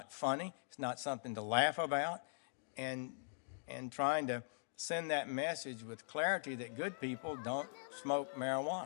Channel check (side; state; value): right; silent; digital silence